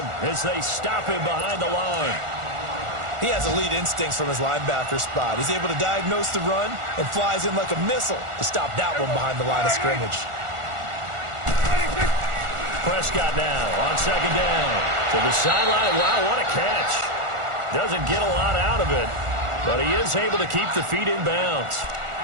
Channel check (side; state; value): left; late; 1.4 ms